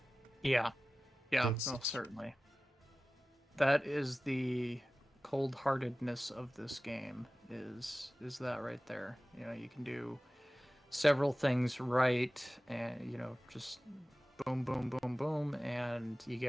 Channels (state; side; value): normal; both; correlation 0.96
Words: Yeah, That's no, it. certainly. That is the cold-heartedness of this game. Is that right there? You can do several things right, and just boom, boom, boom, boom, and you